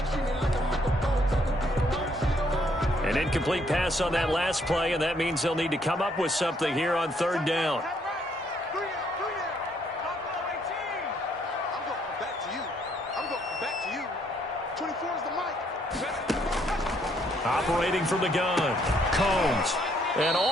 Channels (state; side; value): normal; both; correlation 0.69